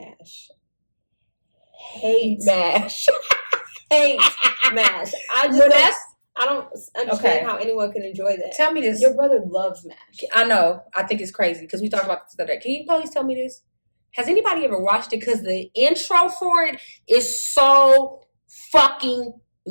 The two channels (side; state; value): both; inverted; correlation -1.00